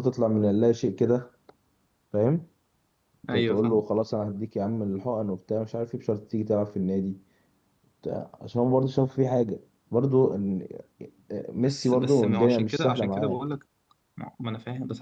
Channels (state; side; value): identical; both; correlation 1.00